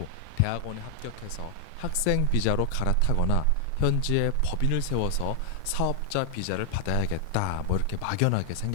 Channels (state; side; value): different; both; correlation 0.00